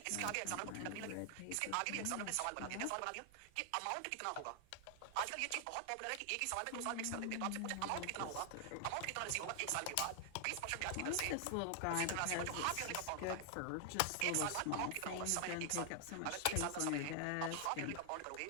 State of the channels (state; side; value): different; both; correlation 0.00